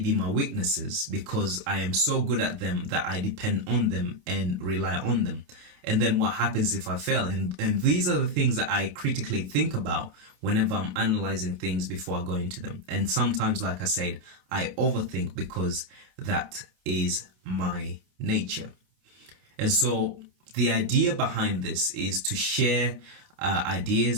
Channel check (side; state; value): left; late; 28 ms